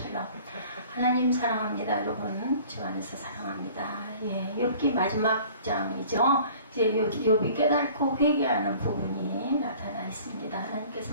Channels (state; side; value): inverted; both; correlation -0.49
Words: 하나님 사랑합니다, 여러분. 주 안에서 사랑합니다. 예, 욥기 마지막 장이죠. 이제 욥이 깨닫고 회개하는 부분이 나타나 있습니다.